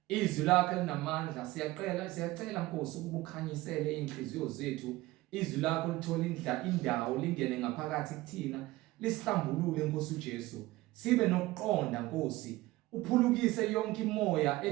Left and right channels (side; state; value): left; quieter; 18.4 dB